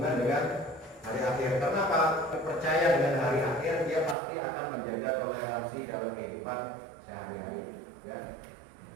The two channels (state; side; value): drops out; left; at 4.2 s